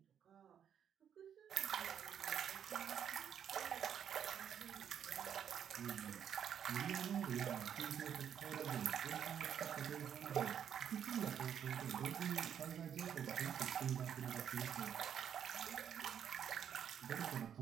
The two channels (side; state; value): left; quieter; 8.8 dB